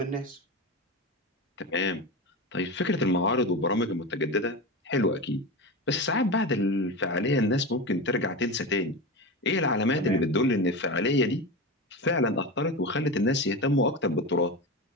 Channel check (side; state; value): both; normal; correlation 0.23